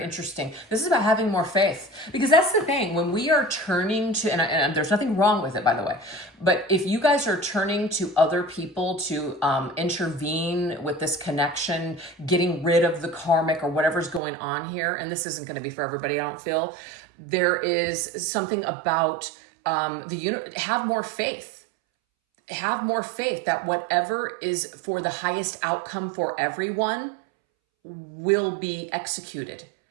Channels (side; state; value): left; drops out; at 14.2 s